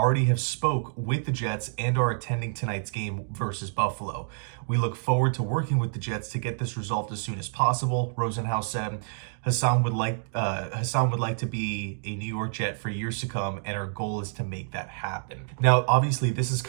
have spoke with the Jets and are attending tonight's game versus Buffalo. We look forward to working with the Jets to get this resolved as soon as possible, Rosenhaus said. Haason would like to be a New York Jet for years to come, and our goal is to make that happen. Now, obviously, this is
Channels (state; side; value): silent; left; digital silence